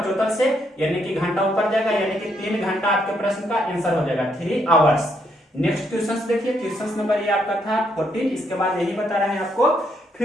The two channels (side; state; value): both; normal; correlation 0.74